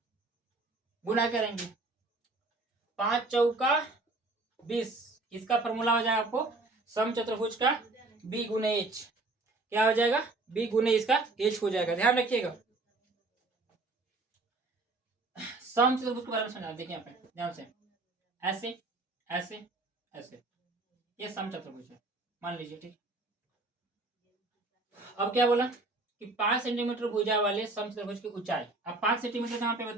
गुना करेंगे, 5 चौका 20, इसका फॉर्मूला हो जाएगा आपको समचतुर्भुज का b गुने h। क्या हो जाएगा, b गुने इसका h हो जाएगा, ध्यान रखिएगा। समचतुर्भुज के बारे में समझा, देखिए यहाँ पे ध्यान से, ऐसे ऐसे, ये समचतुर्भुज है मान लीजिए, ठीक। अब क्या बोला कि 5 सेंटीमीटर भुजा वाले समचतुर्भुज की ऊंचाई। अब 5 सेंटीमीटर कहाँ पे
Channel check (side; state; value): left; quieter; 3.2 dB